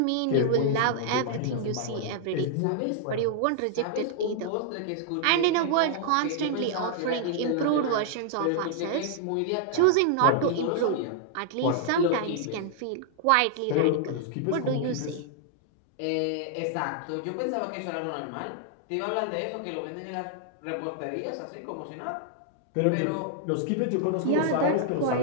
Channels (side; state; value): both; different; correlation -0.01